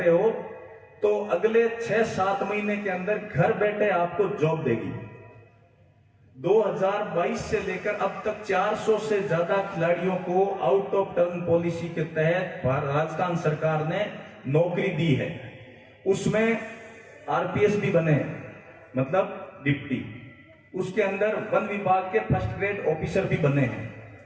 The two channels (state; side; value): identical; both; correlation 1.00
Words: हो, तो अगले 6-7 महीने के अंदर घर बैठे आपको जॉब देगी। 2022 से लेकर अब तक 400 से ज्यादा खिलाड़ियों को आउट ऑफ टर्न पॉलिसी के तहत राजस्थान सरकार ने नौकरी दी है। उसमें आरपीएस भी बने हैं, मतलब डिप्टी। उसके अंदर वन विभाग के फर्स्ट ग्रेड ऑफिसर भी बने हैं।